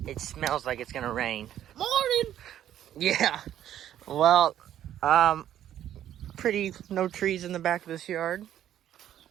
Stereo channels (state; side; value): quieter; left; 11.3 dB